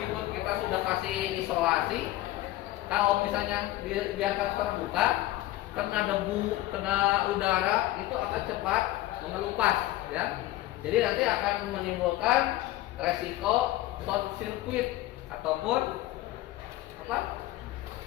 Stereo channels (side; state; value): right; quieter; 16.2 dB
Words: kita sudah kasih isolasi, kalau misalnya biarkan terbuka, kena debu, kena udara, itu akan cepat mengelupas, ya. Jadi nanti akan menimbulkan resiko short circuit ataupun apa?